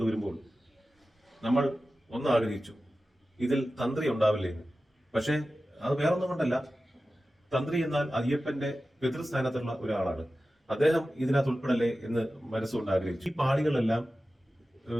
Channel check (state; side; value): normal; both; correlation 0.94